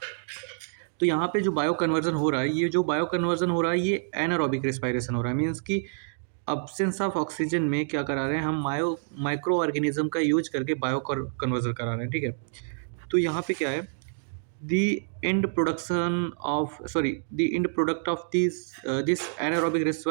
तो यहाँ पे जो बायो कन्वर्जन हो रहा है, ये जो बायो कन्वर्जन हो रहा है ये एनारोबिक रेस्पायरेशन हो रहा है। मीन्स कि अब्सेंस ऑफ ऑक्सीजन में क्या करा रहे हैं हम, माइक्रो ऑर्गेनिज्म का यूज करके बायो कन्वर्जन करा रहे हैं। ठीक है। तो यहाँ पे क्या है, the end production of the end product of this anaerobic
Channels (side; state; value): left; silent; digital silence